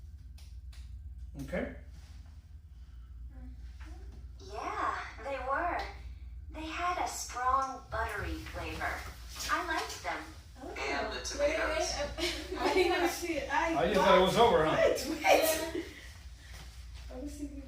Okay? Yeah, they were. They had a strong buttery flavor. I liked them. And the tomatoes? I didn't see it. Oh, you thought it was over, huh? Wait. I was thinking.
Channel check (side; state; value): both; identical; correlation 1.00